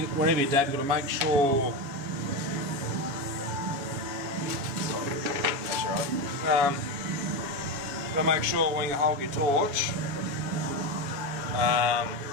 whenever you dab you've got to make sure That's right. you've got to make sure when you hold your torch,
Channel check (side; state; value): left; late; 7.2 ms